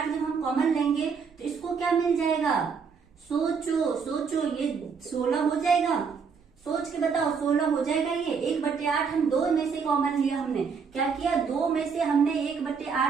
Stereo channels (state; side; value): quieter; left; 5.8 dB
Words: जब हम कॉमन लेंगे तो इसको क्या मिल जाएगा, सोचो ये 16 हो जाएगा। सोच के बताओ 16 हो जाएगा ये। 1/8 हम 2 में से कॉमन लिया, हमने क्या किया, 2 में से हमने